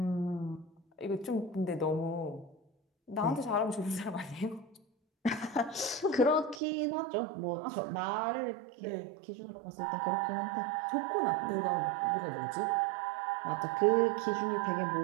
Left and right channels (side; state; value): left; drops out; at 6.6 s